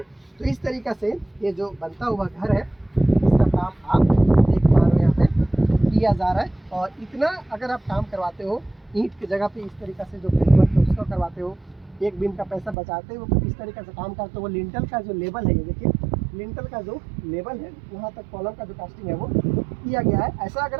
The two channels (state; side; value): drops out; left; at 12.8 s